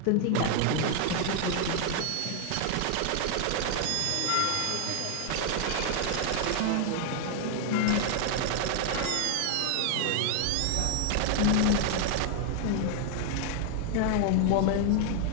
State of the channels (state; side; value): different; both; correlation 0.00